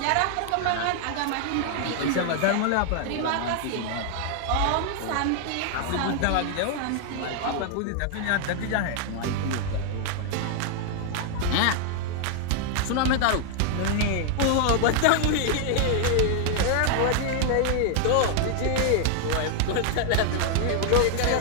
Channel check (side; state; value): both; different; correlation 0.00